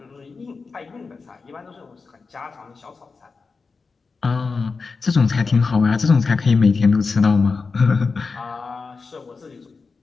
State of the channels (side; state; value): right; quieter; 4.5 dB